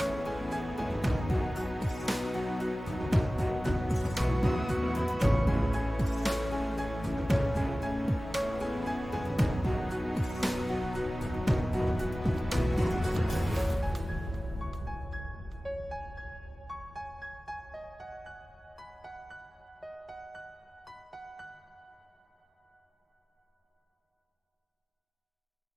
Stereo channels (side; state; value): both; normal; correlation 0.97